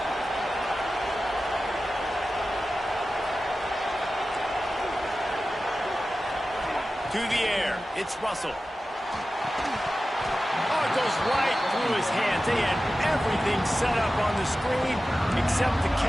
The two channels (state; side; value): normal; both; correlation 0.94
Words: To the air, it's Russell. Oh, it goes right through his hands. They had everything set up on the screen except the